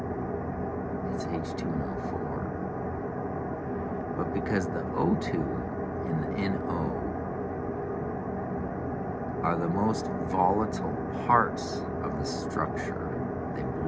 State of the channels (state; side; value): identical; both; correlation 1.00